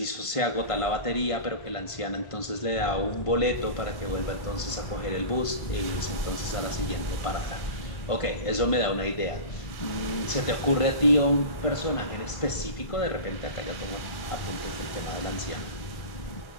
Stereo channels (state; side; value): late; right; 1.5 ms